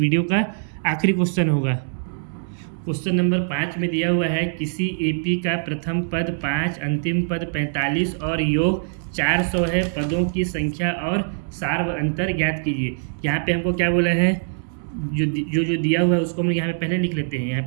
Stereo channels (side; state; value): left; silent; digital silence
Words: का आखिरी क्वेश्चन होगा। क्वेश्चन नंबर 5 में दिया हुआ है, किसी एपी का प्रथम पद 5, अंतिम पद 45 और योग 400 है, पदों की संख्या और सार व अंतर ज्ञात कीजिए। यहाँ पे हमको क्या बोला है, जो दिया हुआ है उसको हम यहाँ पे पहले लिख लेते हैं। यहाँ